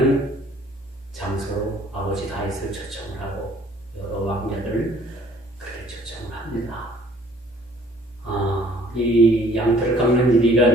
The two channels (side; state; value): both; normal; correlation 0.57